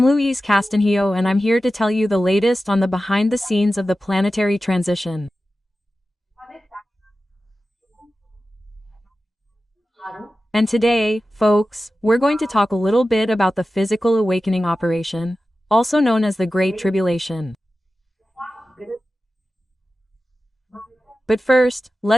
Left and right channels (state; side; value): normal; both; correlation 0.94